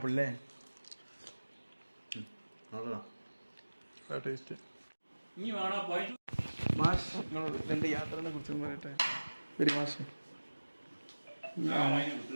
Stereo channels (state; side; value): inverted; both; correlation -1.00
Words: അല്ലേ? ടേസ്റ്റ്. മാഷ് നിങ്ങൾ എൻ്റെ യാത്രയെ കുറിച്ച് പറയട്ടെ. ഒരു മാഷ്